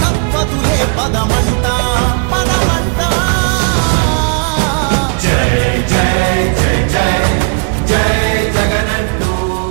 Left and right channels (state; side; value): quieter; left; 38.4 dB